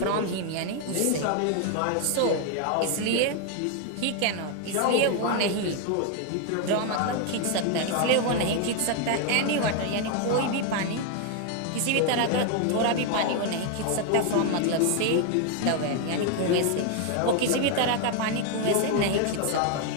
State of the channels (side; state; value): both; different; correlation 0.00